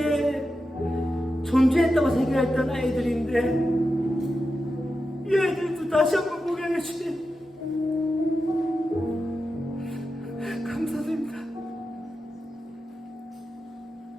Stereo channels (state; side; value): normal; both; correlation 0.90